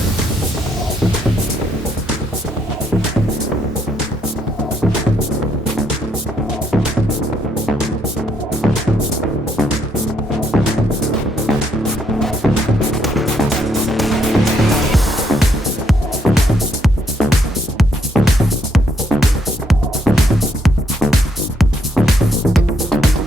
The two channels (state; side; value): normal; both; correlation 0.73